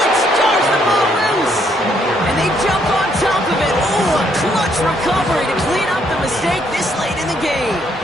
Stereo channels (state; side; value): normal; both; correlation 0.71